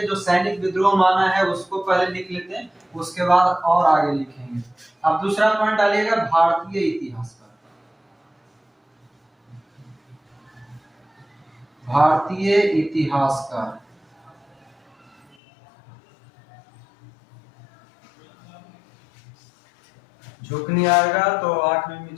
जो सैनिक विद्रोह माना है उसको पहले लिख लेते हैं, उसके बाद और आगे लिखेंगे। अब दूसरा पॉइंट डालिएगा भारतीय इतिहासकार। भारतीय इतिहासकार, झुक नहीं आएगा तो आंख में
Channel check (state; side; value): drops out; right; at 15.4 s